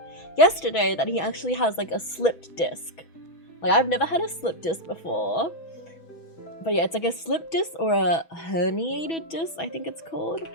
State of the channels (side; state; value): right; late; 6.1 ms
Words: yesterday that he actually has like a slipped disc. Like, I've never had a slipped disc before, but yeah, it's like a slipped disc or a herniated disc, I think it's called.